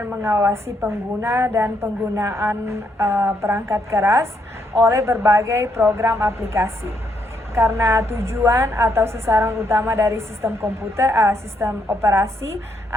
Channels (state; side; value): normal; both; correlation 0.75